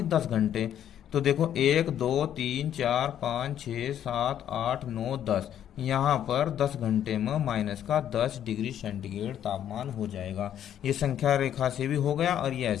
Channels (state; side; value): quieter; right; 10.3 dB